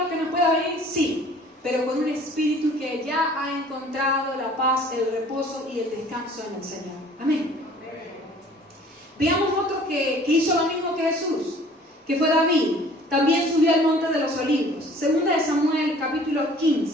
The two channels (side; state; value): both; normal; correlation 0.51